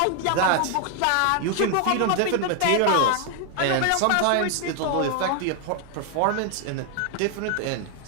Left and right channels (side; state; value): both; different; correlation 0.00